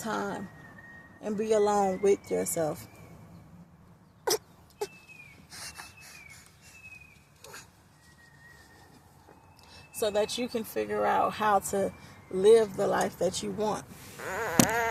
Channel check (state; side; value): identical; both; correlation 1.00